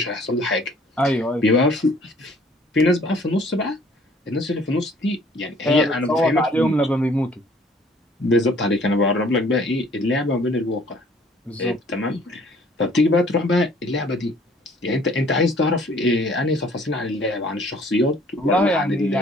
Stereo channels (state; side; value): normal; both; correlation 0.56